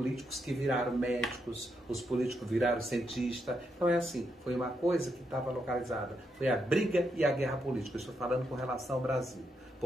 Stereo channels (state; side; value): normal; both; correlation 0.81